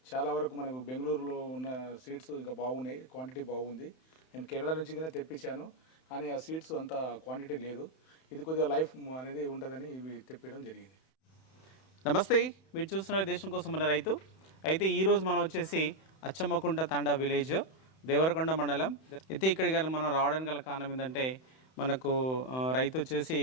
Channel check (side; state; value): right; late; 31 ms